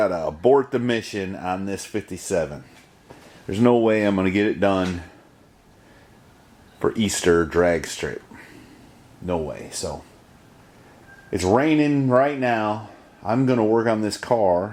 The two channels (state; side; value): identical; both; correlation 1.00